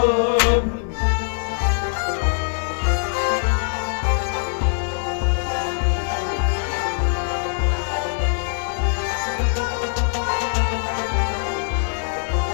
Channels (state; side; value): silent; right; digital silence